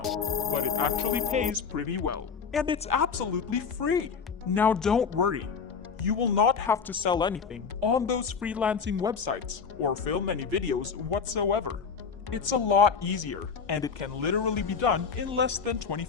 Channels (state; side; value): quieter; right; 5.9 dB